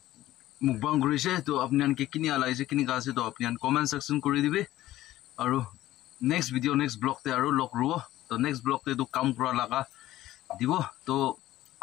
মুকবাং কৰিছে তো আপনি আনকে কিনি আলাইছে কিনি গাছে তো আপনি আন কমেন্ট সেকশন কৰি দিবে আৰু নেক্সট ভিডিও নেক্সট ব্লগ তে আৰু লগ ৰুব তো নেক্সট ব্লগ তে তো কাম কৰা লাগা দিব তো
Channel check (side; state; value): right; quieter; 15.0 dB